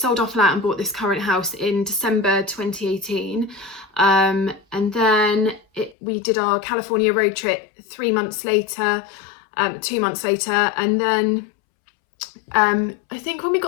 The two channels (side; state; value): right; drops out; at 6.0 s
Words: our flat and bought this current house in December 2018. And then we did our California road trip 2 months later. And then I think when we